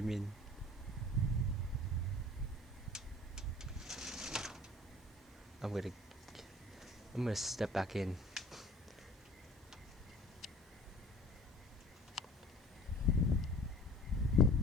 in. I'm gonna step back in.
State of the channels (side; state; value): both; normal; correlation 0.47